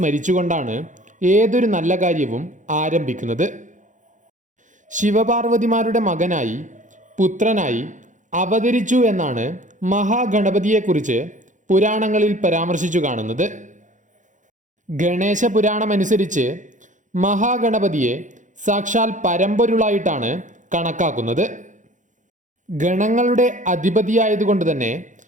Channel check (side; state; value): left; late; 0.36 ms